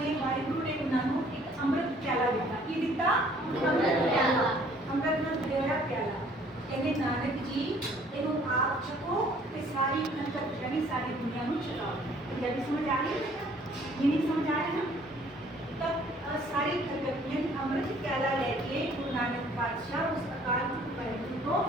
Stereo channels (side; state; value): both; normal; correlation 0.58